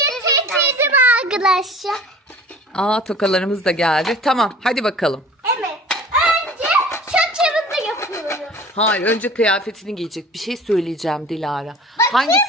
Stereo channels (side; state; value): both; normal; correlation 0.44